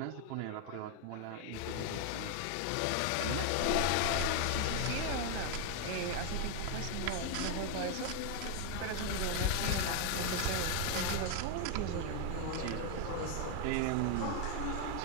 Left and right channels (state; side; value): different; both; correlation 0.00